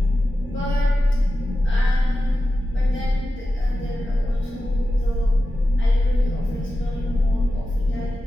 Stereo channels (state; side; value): normal; both; correlation 0.93